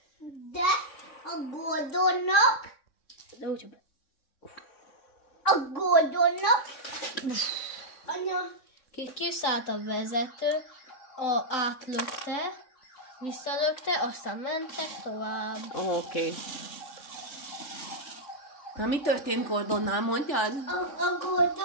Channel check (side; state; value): right; late; 3.6 ms